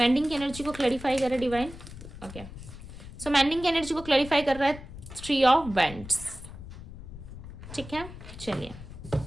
की एनर्जी को क्लैरिफाई करे डिवाइन। ओके सो मेंडिंग की एनर्जी को क्लैरिफाई कर रहा है 3 ऑफ वेंट्स। ठीक है, चलिए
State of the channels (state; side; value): noise; left; rumble, 13 dB below the sound